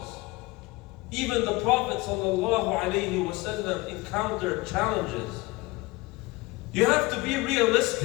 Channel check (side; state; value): right; quieter; 22.2 dB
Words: Even the Prophet ﷺ encountered challenges. You have to be